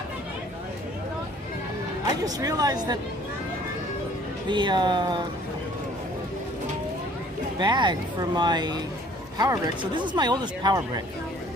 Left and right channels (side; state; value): both; normal; correlation 0.55